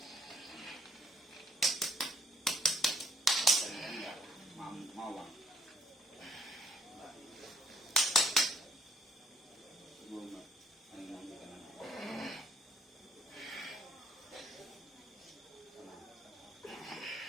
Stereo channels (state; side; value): normal; both; correlation 0.65